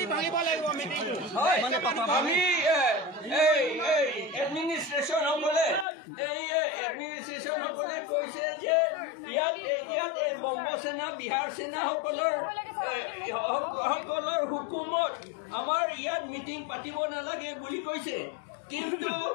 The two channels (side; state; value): right; drops out; at 5.9 s